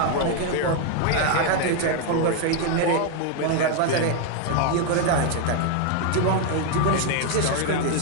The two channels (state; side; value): different; both; correlation 0.01